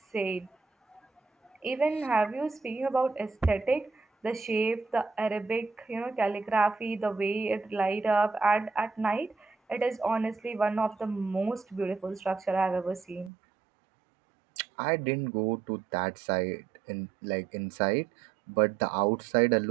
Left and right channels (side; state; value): left; drops out; at 13.3 s